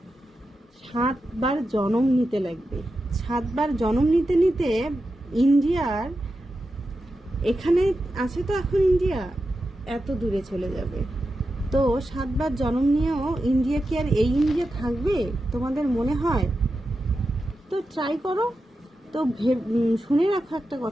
7 বার জন্ম নিতে লাগবে। 7 বার জন্ম নিতে নিতে ইন্ডিয়ার এখানে আছে তো এখন ইন্ডিয়া এত দূরে চলে যাবে। তো 7 বার জন্ম নিয়েও ইন্ডিয়া কি আর এই ইন্ডিয়া থাকবে তোমাদের মনে হয়? তো ট্রাই করো। তো শুনে রাখো একটা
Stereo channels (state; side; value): normal; both; correlation 0.90